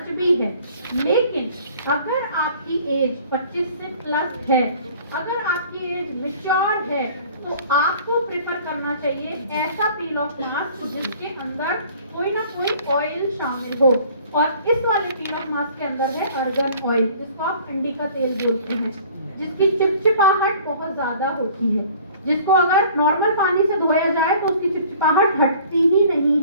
भी है। लेकिन अगर आपकी एज 25 से प्लस है, अगर आपकी एज मैच्योर है, तो आपको प्रेफर करना चाहिए ऐसा पील ऑफ मास्क जिसके अंदर कोई ना कोई ऑयल शामिल हो। और इस वाले पील ऑफ मास्क के अंदर है अर्गन ऑयल, जिसको आप अंडी का तेल बोलते हैं, जिसकी चिपचिपाहट बहुत ज्यादा होती है, जिसको अगर नॉर्मल पानी से धोया जाए तो उसकी चिपचिपाहट हटती ही नहीं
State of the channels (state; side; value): inverted; both; correlation -0.51